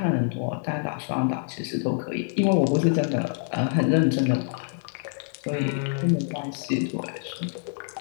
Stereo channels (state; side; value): silent; right; digital silence